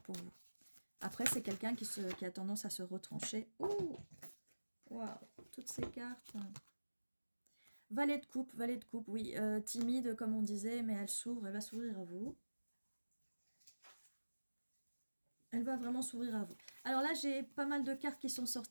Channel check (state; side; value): inverted; both; correlation -1.00